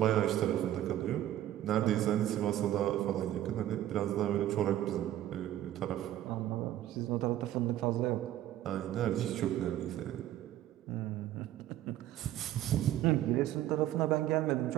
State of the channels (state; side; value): quieter; left; 13.0 dB